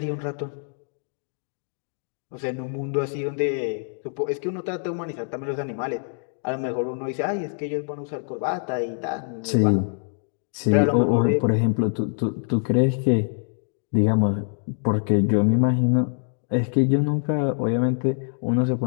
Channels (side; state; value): right; silent; digital silence